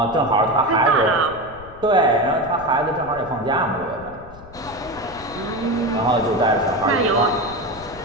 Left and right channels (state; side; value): noise; left; rumble, 19 dB below the sound